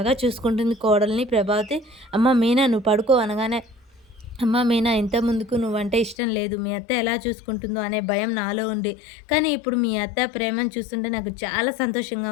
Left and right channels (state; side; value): drops out; right; at 6.2 s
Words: చూసుకుంటుంది కోడల్ని ప్రభావతి. "అమ్మ మీనా నువ్వు పడుకో" అనగానే అమ్మ మీనా ఇంతకుముందుకు నువ్వంటే ఇష్టం లేదు. మీ అత్త ఎలా చూసుకుంటుందో అనే భయం నాలో ఉంది. కానీ ఇప్పుడు మీ అత్త ప్రేమను చూస్తుంటే నాకు చాలా సంతోషంగా